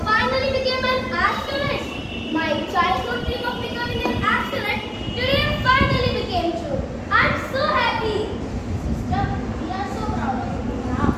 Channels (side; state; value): both; identical; correlation 1.00